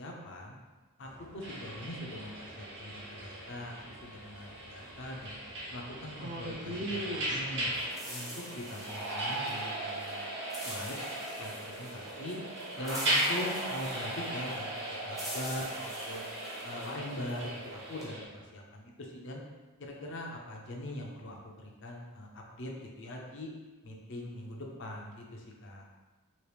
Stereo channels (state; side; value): normal; both; correlation 0.12